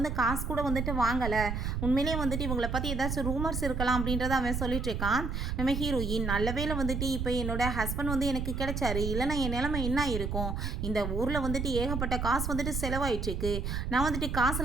காசு கூட வந்துட்டு வாங்கலை, உண்மையிலேயே வந்துட்டு இவங்களை பற்றி ஏதாச்சும் ரூமர்ஸ் இருக்கலாம் அப்படின்றத அவன் சொல்லிட்டு இருக்கான். நம்ம ஹீரோயின் நல்ல வேளை வந்துட்டு இப்போ என்னோட ஹஸ்பண்ட் வந்து எனக்கு கிடைச்சாரு, இல்லைனா என் நிலைமை என்ன இருக்கும், இந்த ஊரில் வந்துட்டு ஏகப்பட்ட காசு வந்துட்டு செலவாயிட்டுருக்கு, நான் வந்துட்டு காசு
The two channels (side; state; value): right; noise; rumble, 2 dB below the sound